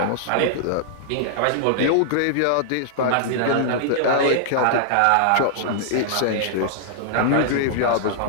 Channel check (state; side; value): different; both; correlation -0.01